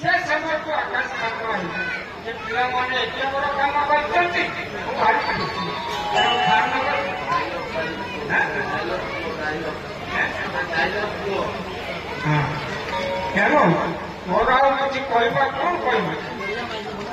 ସମୟକୁ ଆକାଶ ପାତ୍ର ହେଇଛି। ଯେ ପିଲାମାନେ ଏତେ ବଡ଼ କାମ କରିଛନ୍ତି, ମୁଁ ଭାରି ଖୁସି। ତେଣୁ ତେଣୁ ମୋର ଆଉ କିଛି କହିବା କ'ଣ କହିବି?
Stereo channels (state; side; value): identical; both; correlation 1.00